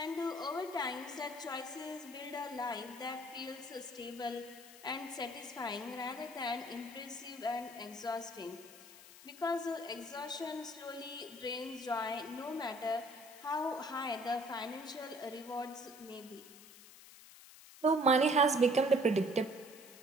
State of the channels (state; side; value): noise; left; hiss, 18 dB below the sound